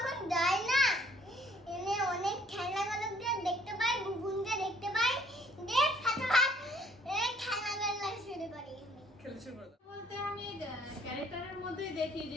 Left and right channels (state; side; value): normal; both; correlation 0.60